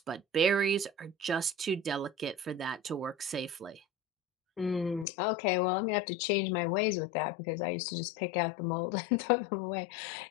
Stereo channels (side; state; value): right; drops out; at 5.1 s